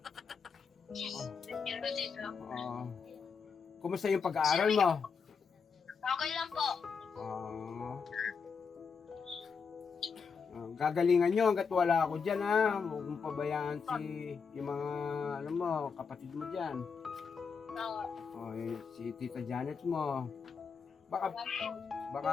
Nandiyan po dito. Kumusta yung pag-aaral mo? Okay lang po. Gagalingan nyo hanggat wala ako dyan huwag mong pabayaan yung mga kapatid mo dyan. Si Tita Janet mo. Baka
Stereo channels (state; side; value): quieter; right; 5.7 dB